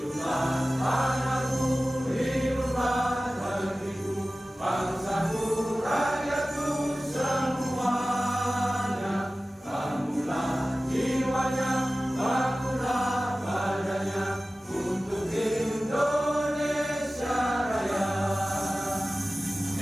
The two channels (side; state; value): both; normal; correlation 0.96